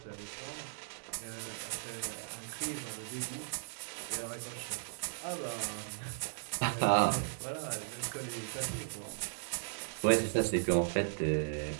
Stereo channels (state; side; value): silent; left; digital silence